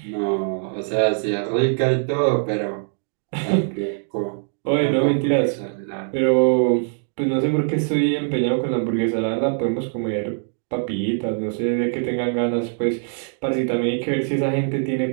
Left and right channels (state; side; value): silent; left; digital silence